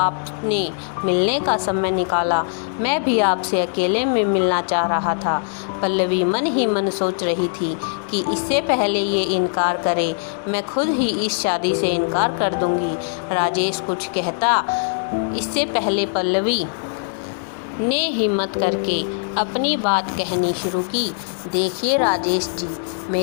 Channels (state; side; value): silent; right; digital silence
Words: मिलने का समय निकाला। मैं भी आपसे अकेले में मिलना चाह रहा था। पल्लवी मन ही मन सोच रही थी कि इससे पहले ये इनकार करे, मैं खुद ही इस शादी से इनकार कर दूंगी। राजेश कुछ कहता इससे पहले पल्लवी ने हिम्मत करके अपनी बात कहनी शुरू की। देखिए राजेश जी,